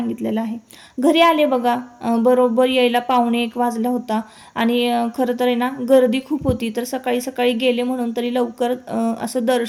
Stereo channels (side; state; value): both; identical; correlation 1.00